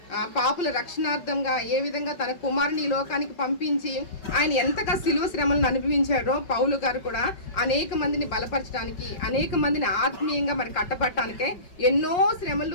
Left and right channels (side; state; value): right; late; 5.2 ms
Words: పాపుల రక్షణార్థంగా ఏ విధంగా తన కుమారుని లోకానికి పంపించి ఆయన ఎంతగా శిలువ శ్రమలను అనుభవించారో పౌలు గారు కూడా అనేక మందిని బలపరచడానికి, అనేక మందిని ఆత్మీయంగా మరి కట్టబట్టడానికే ఎన్నో